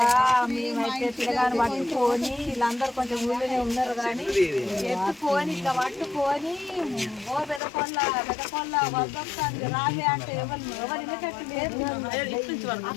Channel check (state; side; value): drops out; right; at 7.6 s